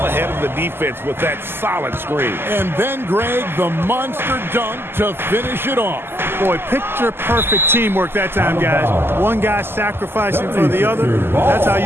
ahead of the defense with that solid screen. And then, Greg, the monster dunk to finish it off. Boy, picture-perfect teamwork that time, guys. One guy sacrificing for the other. That's how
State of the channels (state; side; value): late; left; 0.11 ms